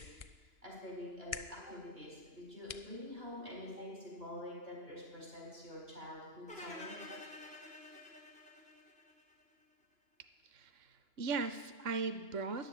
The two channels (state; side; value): late; left; 2.9 ms